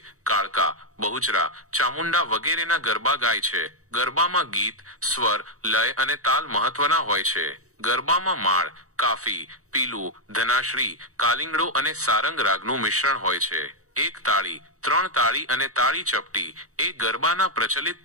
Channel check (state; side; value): late; left; 0.65 ms